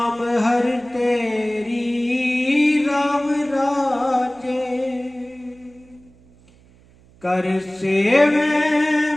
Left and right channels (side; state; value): right; noise; hum, 28 dB below the sound